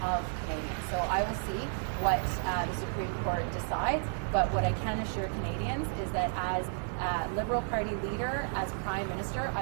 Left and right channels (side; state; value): left; silent; 56 dB below the other